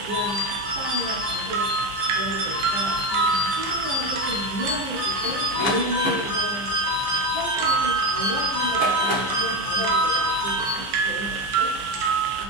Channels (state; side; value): late; left; 15 ms